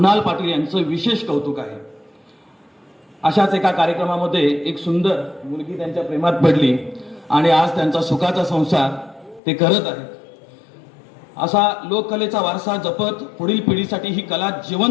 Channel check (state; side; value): drops out; right; at 9.4 s